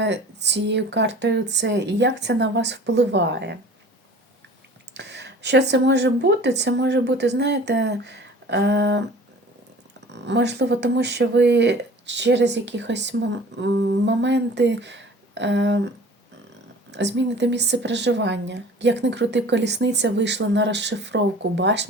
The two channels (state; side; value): normal; both; correlation 0.45